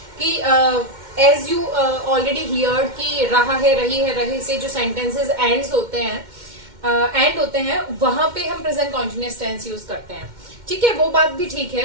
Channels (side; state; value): left; late; 2.1 ms